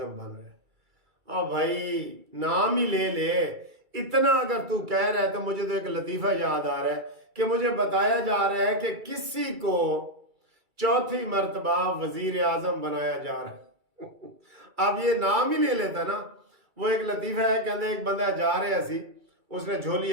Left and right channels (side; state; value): left; late; 2.3 ms